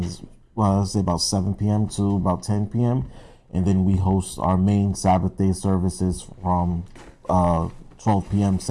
let's say about 7 p.m. to about 10 p.m. And then we host our main Sabbath day services from 12 p.m.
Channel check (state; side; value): identical; both; correlation 1.00